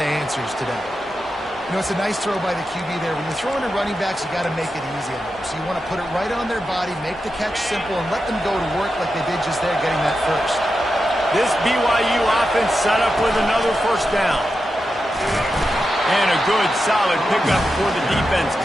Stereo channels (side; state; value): both; normal; correlation 0.89